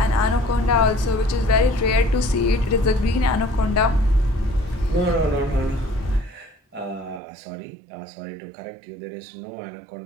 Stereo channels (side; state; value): left; drops out; at 7.2 s